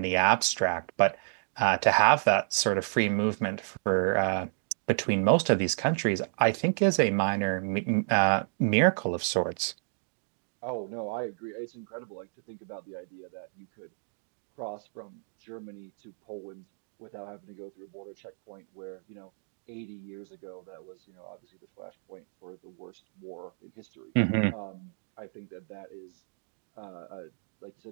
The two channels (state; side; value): silent; left; digital silence